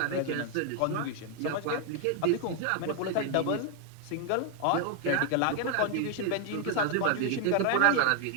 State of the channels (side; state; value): both; different; correlation 0.00